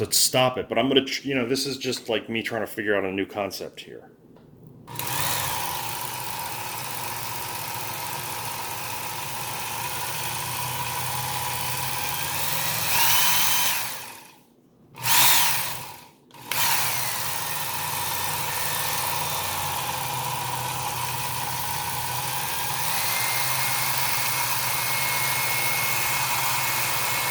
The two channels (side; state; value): both; identical; correlation 1.00